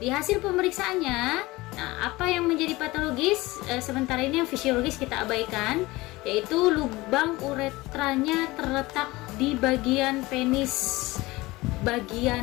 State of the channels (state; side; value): quieter; right; 20.6 dB